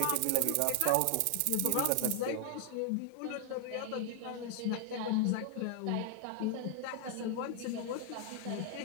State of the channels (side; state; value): both; different; correlation 0.00